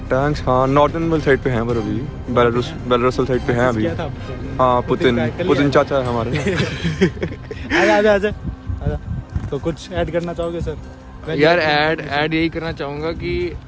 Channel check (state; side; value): identical; both; correlation 1.00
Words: टैंक्स, हाँ नॉर्दर्न साइड पे हैं पर अभी बेलारूस साइड पे हैं अभी। किया था आपको? हाँ पुतिन पुतिन चाचा है हमारे। आजा। तो कुछ ऐड करना चाहोगे सर? यार ऐड यही करना चाहूंगा कि